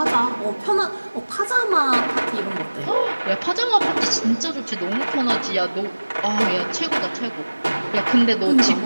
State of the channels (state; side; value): inverted; both; correlation -1.00